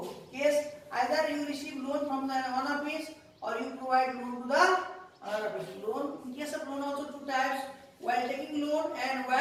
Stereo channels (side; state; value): both; identical; correlation 1.00